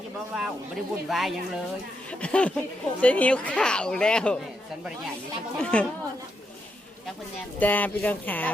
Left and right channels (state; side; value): normal; both; correlation 0.82